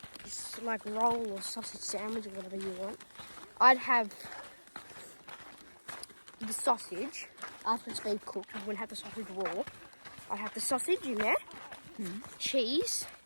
like roll or sausage sandwich or whatever you want, I'd have the sausage after it's been cooked. I wouldn't have the sausage raw. I'd have the sausage in there, cheese,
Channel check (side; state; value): both; inverted; correlation -1.00